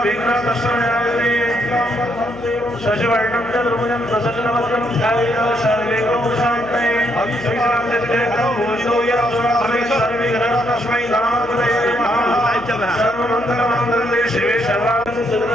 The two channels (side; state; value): right; noise; hum, 21 dB below the sound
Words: शशिवर्णं चतुर्भुजं प्रसन्नवदनं ध्यायेत् सर्वे शान्तये तस्मै सर्वमङ्गलमाङ्गल्ये शिवे